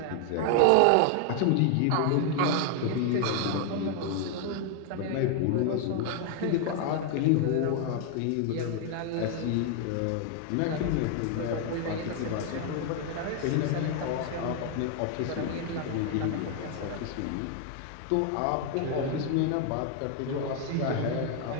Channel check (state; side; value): different; both; correlation 0.00